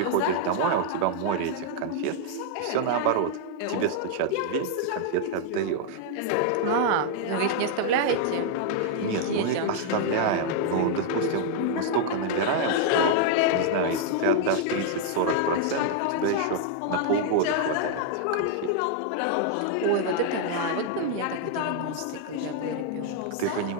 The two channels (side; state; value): both; different; correlation 0.00